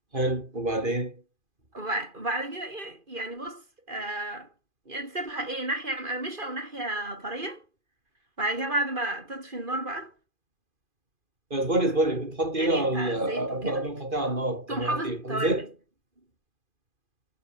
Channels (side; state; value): left; late; 2.5 ms